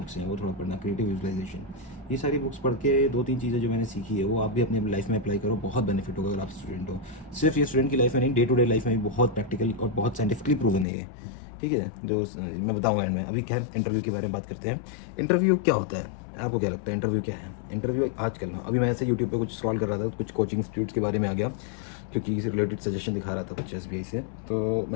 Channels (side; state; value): right; drops out; at 10.9 s